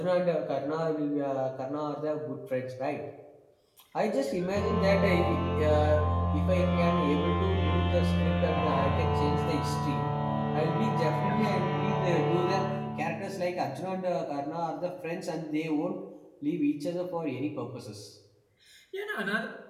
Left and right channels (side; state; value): both; identical; correlation 1.00